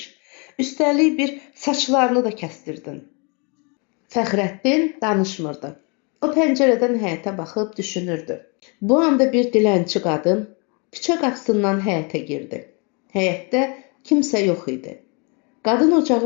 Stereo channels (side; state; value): right; quieter; 33.4 dB